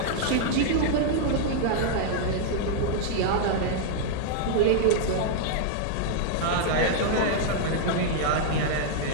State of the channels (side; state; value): both; different; correlation -0.01